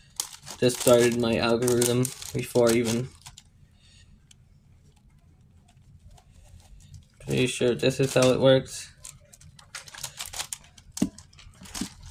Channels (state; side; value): identical; both; correlation 1.00